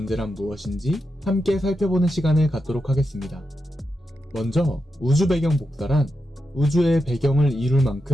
무엇인지 함께 살펴보는 시간을 갖도록 하겠습니다. 먼저 우주 배경 복사란 우주의 배경을 이룰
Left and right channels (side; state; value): both; normal; correlation 0.87